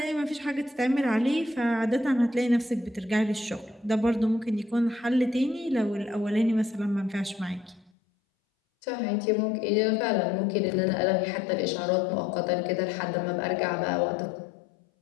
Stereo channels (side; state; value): right; drops out; at 7.9 s